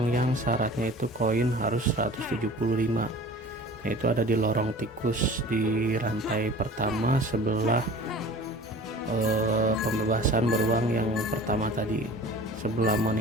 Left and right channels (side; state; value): both; normal; correlation 0.42